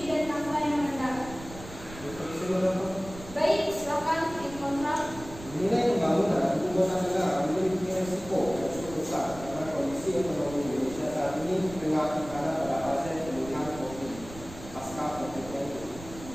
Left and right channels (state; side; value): noise; right; rumble, 15 dB below the sound